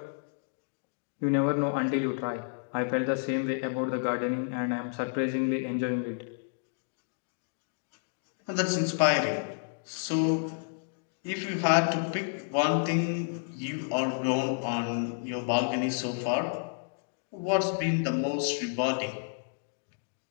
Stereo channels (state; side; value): silent; right; digital silence